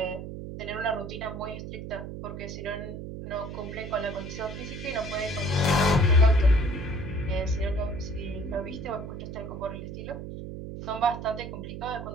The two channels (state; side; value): noise; right; hum, 8 dB below the sound